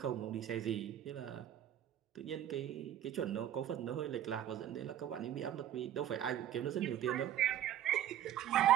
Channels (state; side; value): quieter; left; 11.4 dB